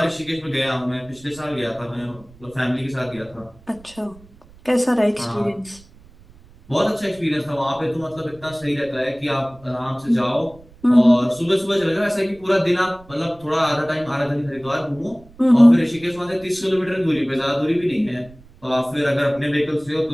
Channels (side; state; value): right; noise; rumble, 25 dB below the sound